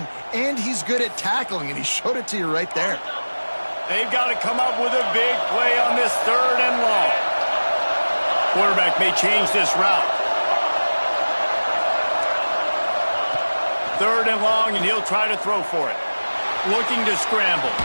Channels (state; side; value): inverted; both; correlation -1.00